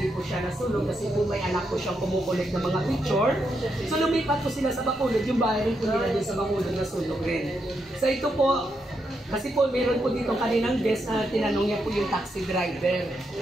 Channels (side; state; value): both; normal; correlation 0.82